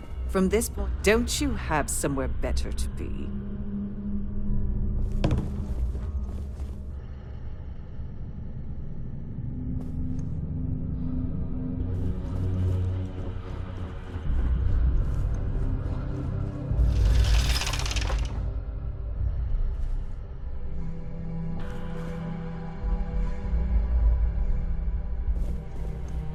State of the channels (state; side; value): identical; both; correlation 1.00